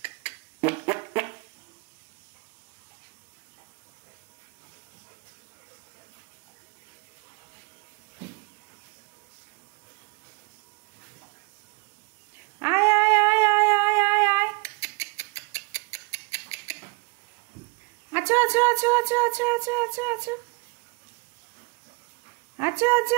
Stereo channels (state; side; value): quieter; left; 27.7 dB